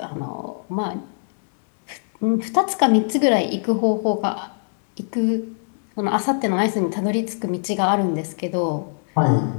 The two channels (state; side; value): silent; right; digital silence